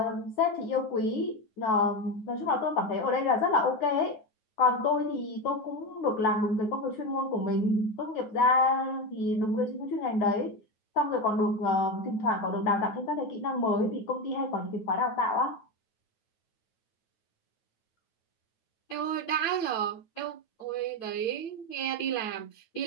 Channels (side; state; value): right; late; 9.2 ms